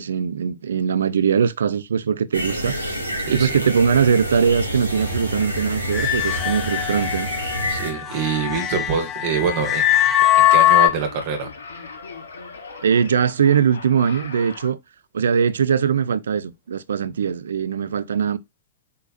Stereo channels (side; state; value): both; inverted; correlation -0.39